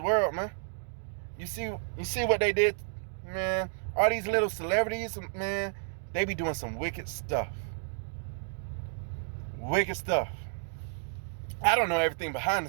man. You see what they did, man? All these little celebrities, man, they be doing some wicked stuff. Wicked stuff. I don't know everything behind the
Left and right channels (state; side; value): silent; left; digital silence